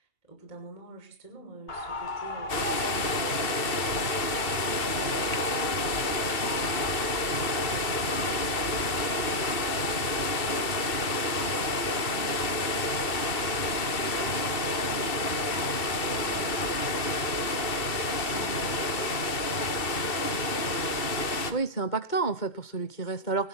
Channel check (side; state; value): right; late; 2.6 ms